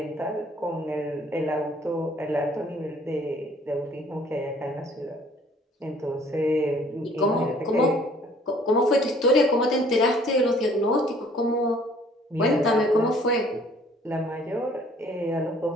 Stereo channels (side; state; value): both; normal; correlation 0.57